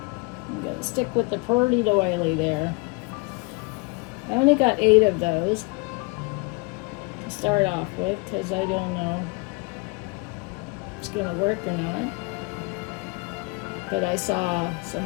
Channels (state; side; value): quieter; right; 28.9 dB